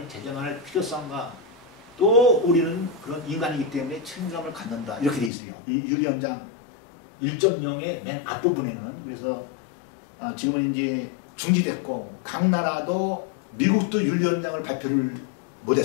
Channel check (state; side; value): drops out; right; at 5.3 s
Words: 제정할 필요성과 또 우리는 그런 인간이기 때문에 책임감을 갖는다, 이렇게 돼 있어요. 이 윤리 현장 1.0의 맨 앞부분에는. 그래서 지금은 이제 중지됐고 각 나라도 미국도 윤리 현장을 발표를